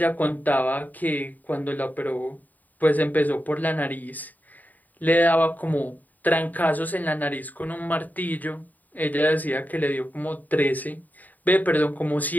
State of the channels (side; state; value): right; late; 0.083 ms